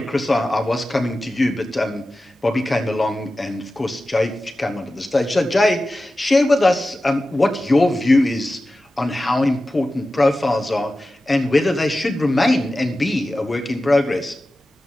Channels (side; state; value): both; normal; correlation 0.94